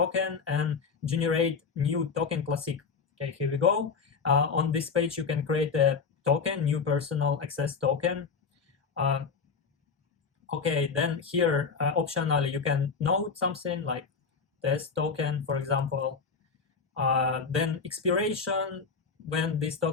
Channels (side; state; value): right; quieter; 5.3 dB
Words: and generate new token classic. Okay, here we go. On this page, you can create a token, new personal access token. Okay, then here, optionally, you can note something like test token, for example. Then expiration, when this